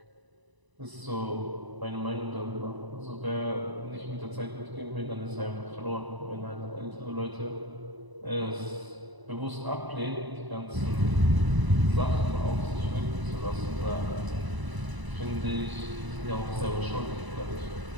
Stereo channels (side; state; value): left; late; 1.0 ms